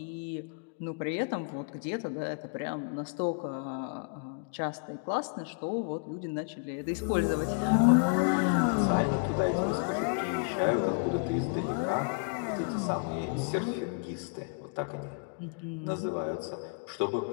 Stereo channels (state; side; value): quieter; right; 35.3 dB